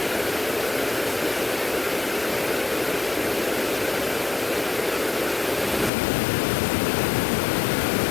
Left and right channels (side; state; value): right; drops out; at 5.9 s